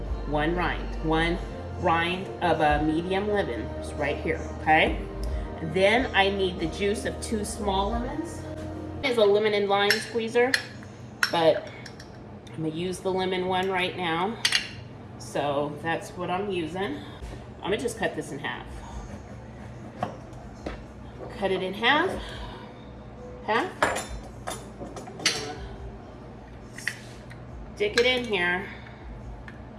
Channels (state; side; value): identical; both; correlation 1.00